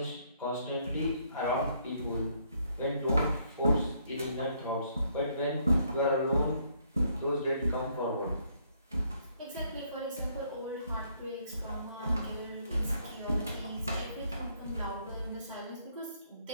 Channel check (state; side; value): inverted; both; correlation -0.69